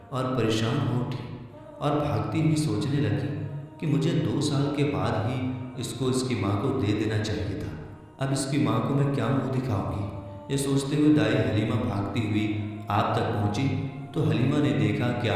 اور پریشان ہو اٹھی اور بھاگتی ہوئی سوچنے لگی کہ مجھے 2 سال کے بعد ہی اس کو اس کی ماں کو دے دینا چاہیے تھا، اب اس کی ماں کو میں کیا منہ دکھاؤں گی۔ یہ سوچتے ہوئے دائی حلیمہ بھاگتی ہوئی آپ تک پہنچی تو حلیمہ نے دیکھا کہ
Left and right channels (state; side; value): identical; both; correlation 1.00